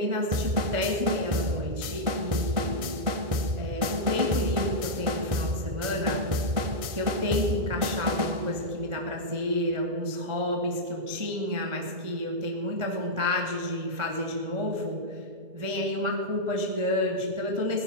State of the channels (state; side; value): late; left; 1.6 ms